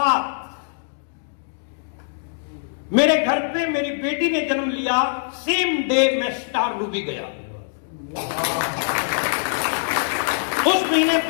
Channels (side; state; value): right; silent; digital silence